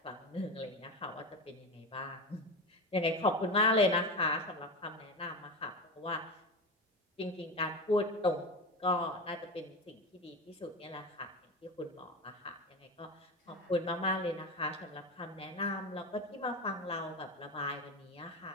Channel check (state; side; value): normal; both; correlation 0.23